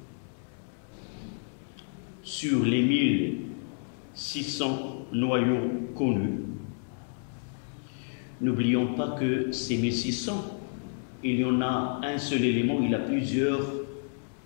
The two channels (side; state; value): right; silent; 58 dB below the other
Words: n'oublions pas que ces 1600, il y en a un seul élément, il a plusieurs